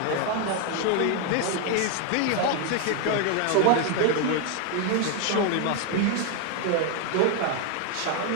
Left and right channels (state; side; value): different; both; correlation 0.01